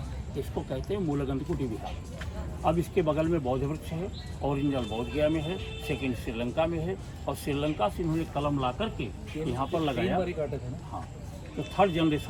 इसको कहते हैं मूलगंध कुटी विहार। अब इसके बगल में बौद्ध वृक्ष है। ओरिजिनल बौद्ध गया में है, सेकंड श्रीलंका में है। और श्रीलंका से इन्होंने कलम ला करके यहाँ पर लगाया। हाँ, तो 3rd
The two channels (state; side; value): identical; both; correlation 1.00